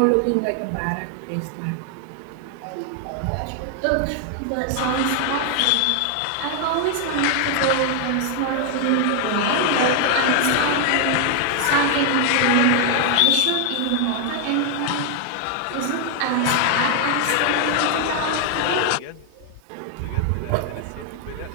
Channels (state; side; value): different; both; correlation 0.00